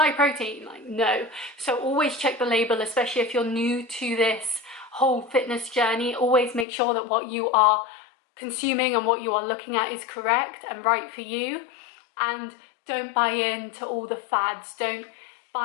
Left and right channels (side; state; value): right; drops out; at 6.7 s